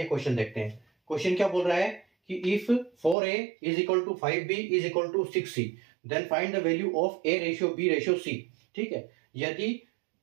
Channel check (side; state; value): left; drops out; at 3.2 s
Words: क्वेश्चन देखते हैं। क्वेश्चन क्या बोल रहा है कि if 4a is equal to 5b is equal to 6c then find the value of a ratio b ratio c। ठीक है, यदि